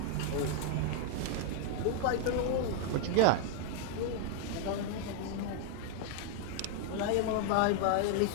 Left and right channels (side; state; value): both; different; correlation 0.00